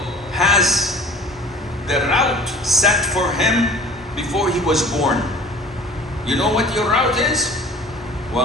has the route set for him before he was born. You know what your route is?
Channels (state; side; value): normal; both; correlation 0.44